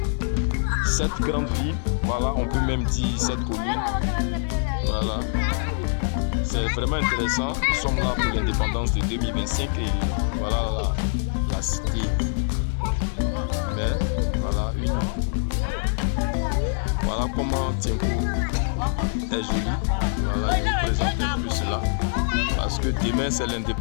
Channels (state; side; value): silent; right; digital silence